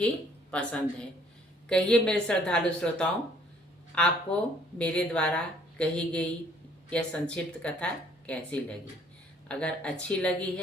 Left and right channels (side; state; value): both; normal; correlation 0.61